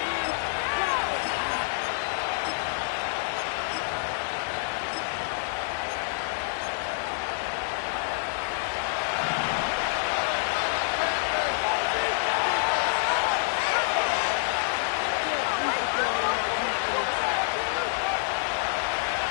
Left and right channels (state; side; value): silent; right; 60 dB below the other